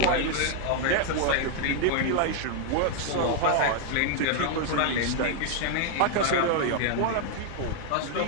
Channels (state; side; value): different; both; correlation 0.00